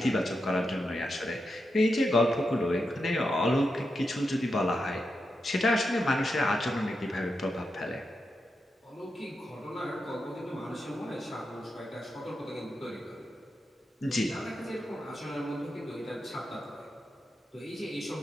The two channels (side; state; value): both; normal; correlation 0.87